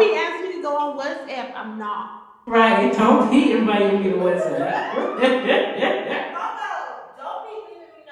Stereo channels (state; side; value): identical; both; correlation 1.00